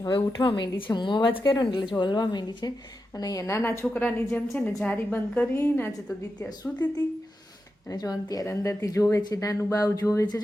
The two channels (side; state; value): both; normal; correlation 0.89